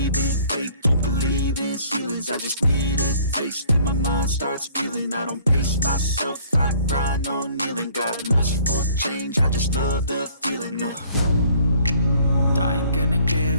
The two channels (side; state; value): both; inverted; correlation -0.57